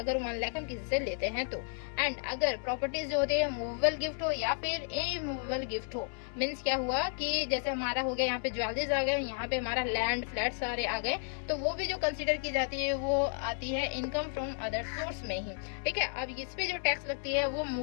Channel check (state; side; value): silent; right; 56 dB below the other